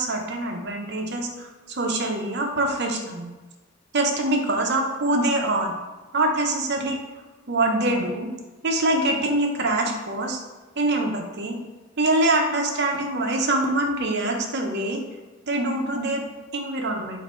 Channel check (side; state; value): both; normal; correlation -0.01